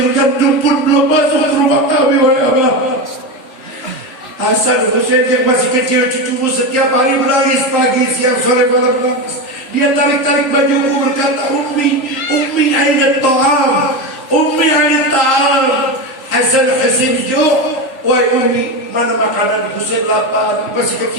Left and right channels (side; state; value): right; late; 3.5 ms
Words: gandum pun belum masuk ke rumah kami wahai Abah. Hasan Husain yang masih kecil, cucumu setiap hari menangis, pagi, siang, sore, malam menangis. Dia tarik-tarik bajuku berkata, Ummi aina ta'am, Ummi aina ta'am. Hasan Husain ju', wahai Ummi, mana makanan? Husain lapar, masih